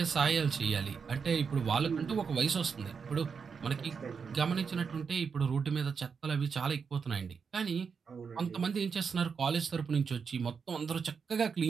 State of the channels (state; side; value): quieter; left; 5.9 dB